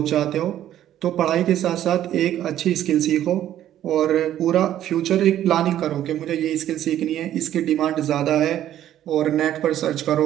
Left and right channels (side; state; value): left; quieter; 11.9 dB